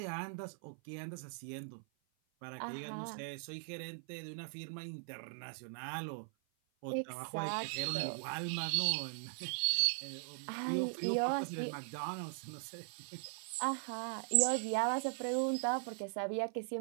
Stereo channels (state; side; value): silent; left; 51 dB below the other